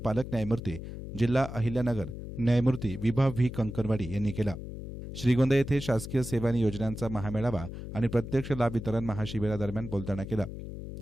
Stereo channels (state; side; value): noise; left; hum, 9 dB below the sound